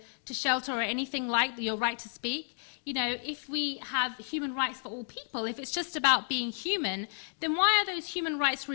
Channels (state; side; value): silent; right; digital silence